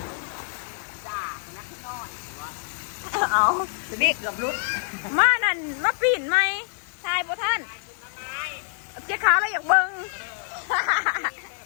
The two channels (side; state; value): right; silent; 61 dB below the other